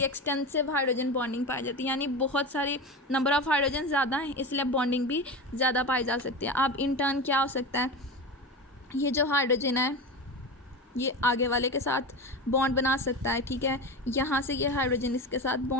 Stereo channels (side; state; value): both; normal; correlation 0.24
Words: एक्सटेंसिव हाइड्रोजन बॉन्डिंग पाई जाती है, यानी बहुत सारी नंबर ऑफ़ हाइड्रोजन ज़्यादा हैं, इसलिए बॉन्डिंग भी ज़्यादा पाई जा सकती है। अब इन टर्न क्या हो सकता है, ये जो हाइड्रोजन है ये आगे वाले के साथ बॉन्ड बना सकता है, ठीक है। यहाँ से ये हाइड्रोजन इसके साथ